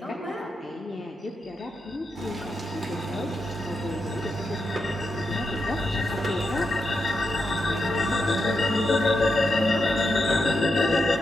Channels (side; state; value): both; normal; correlation 0.85